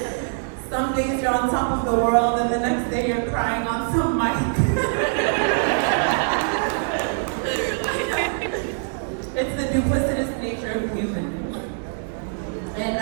Some days you're on top of the world and the next day you're crying on some mic. It's the duplicitous nature of humans. And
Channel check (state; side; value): silent; left; 63 dB below the other